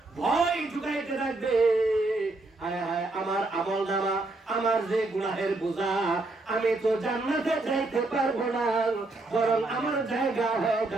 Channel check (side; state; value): left; quieter; 3.1 dB